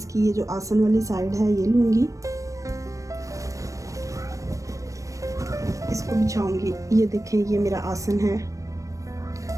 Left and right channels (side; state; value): left; late; 0.16 ms